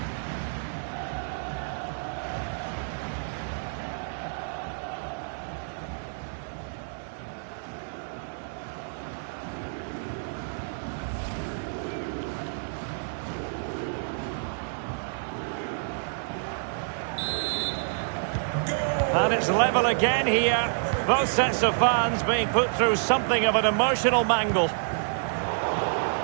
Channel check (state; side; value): silent; left; digital silence